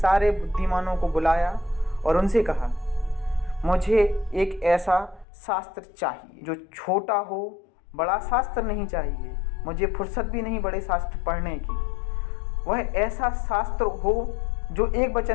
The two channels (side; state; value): right; drops out; at 5.2 s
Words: बुद्धिमानों को बुलाया और उनसे कहा, मुझे एक ऐसा शास्त्र चाहिए जो छोटा हो, बड़ा शास्त्र नहीं चाहिए, मुझे फुर्सत भी नहीं बड़े शास्त्र पढ़ने की। वह ऐसा शास्त्र हो जो एक